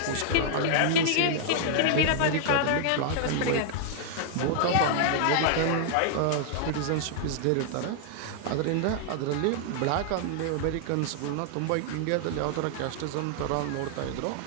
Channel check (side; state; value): both; different; correlation 0.00